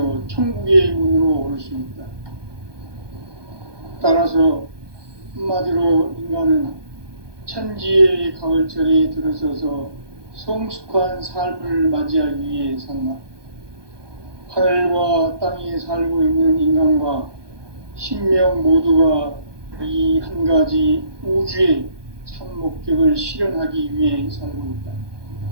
천국의 문으로 올 수 있다. 따라서 한마디로 인간은 천지의 가을철에 들어서서 성숙한 삶을 맞이하기 위해 산다. 하늘과 땅에 살고 있는 인간과 신명 모두가 이 한 가지 우주의 참 목적을 실현하기 위해 살고 있다.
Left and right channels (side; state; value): left; late; 1.2 ms